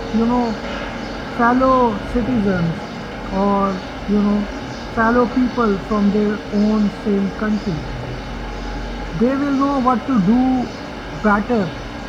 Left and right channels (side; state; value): both; identical; correlation 1.00